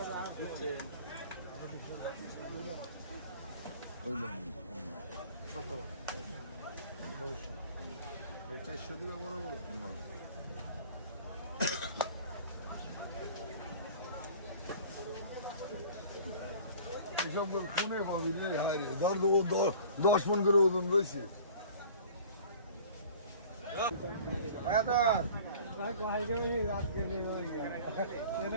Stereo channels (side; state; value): both; inverted; correlation -0.46